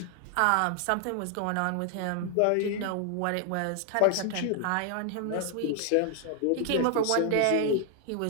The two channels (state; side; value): different; both; correlation 0.00